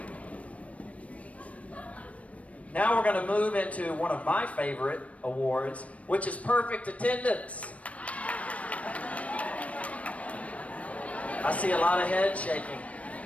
Now we're going to move into one of my favorite awards, which is perfect attendance. I see a lot of head shaking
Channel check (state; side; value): late; right; 0.065 ms